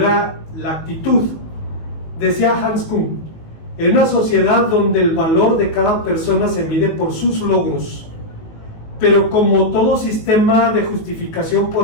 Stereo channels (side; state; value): right; late; 19 ms